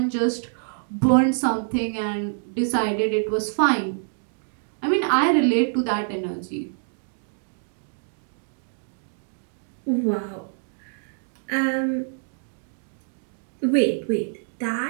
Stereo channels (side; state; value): left; silent; digital silence